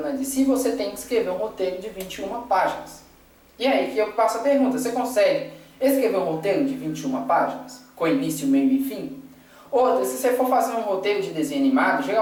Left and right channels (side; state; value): both; identical; correlation 1.00